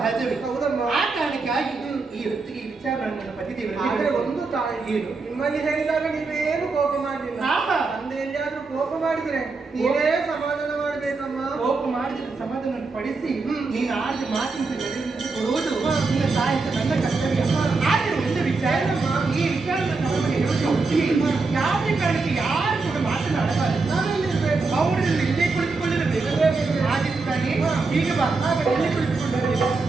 ಹೌದಮ್ಮ. ಆ ಕಾರಣಕ್ಕಾಗಿ ಈ ಹೊತ್ತಿಗೆ ಈ ವಿಚಾರ ನನ್ನ ಪತಿದೇವರಿಗೆ ಆದ್ರೆ ಹೇಳಿದೆ. ಒಂದು ತಾಯಿ, ಏನು? ನಿಮ್ಮಲ್ಲಿ ಹೇಳಿದಾಗ ನೀವೇನು ಕೋಪ ಮಾಡಲಿಲ್ಲ. ಆಹಾ. ತಂದೆ ಎಲ್ಲಿಯಾದ್ರೂ ಕೋಪ ಮಾಡಿದ್ರೆ ನೀವೇ ಸಮಾಧಾನ ಮಾಡ್ಬೇಕಮ್ಮ. ಕೋಪ ಮಾಡಿದ ಸಮಾಧಾನ ಪಡಿಸಿ ನೀನು ಆಡಿದ ಮಾತಿನ ಕೊಡುವುದು ನಿನ್ನ ತಾಯಿ ಅಂತ ನನ್ನ ಕರ್ತವ್ಯ. ಆದ್ರೆ ಒಂದು ವಿಚಾರ, ಈ ವಿಚಾರ ನಮಗೆ ಹೇಳುವುದು ಒಪ್ಪಿಗೆ. ಯಾವುದೇ ಕಾರಣಕ್ಕೆ ಯಾರು ಕೂಡ ಮಾತನಾಡಬಾರದು. ನಾನೆಲ್ಲಿರ್ಬೇಕು? ಅವರಲ್ಲಿ ಇಲ್ಲೇ ಕುಳಿತುಕೊಳ್ಳಬೇಕು. ಆಗಿದ್ದಾನೆ ಈಗ ಬಾ, ಎಲ್ಲಿ ಕುಳಿತುಕೊಳ್ಳಬೇಕು?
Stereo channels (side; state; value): left; quieter; 4.0 dB